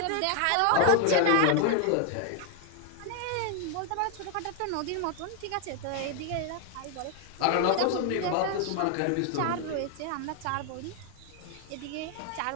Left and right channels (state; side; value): different; both; correlation 0.00